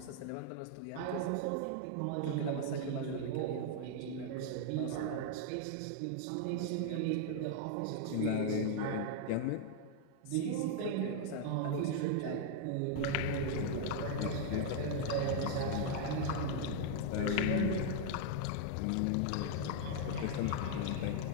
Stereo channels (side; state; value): both; different; correlation 0.00